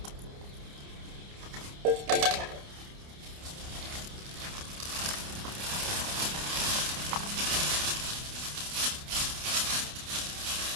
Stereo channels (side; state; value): left; late; 29 ms